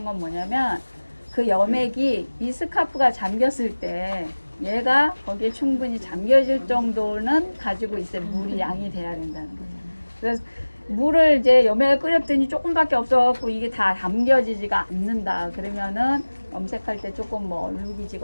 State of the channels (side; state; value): both; inverted; correlation -1.00